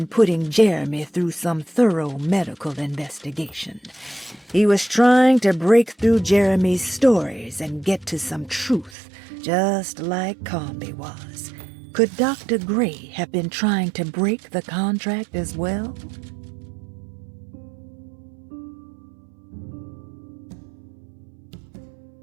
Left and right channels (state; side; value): drops out; left; at 9.0 s